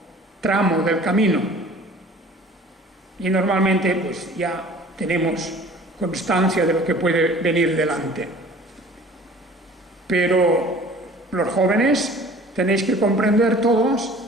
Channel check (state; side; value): normal; both; correlation 0.48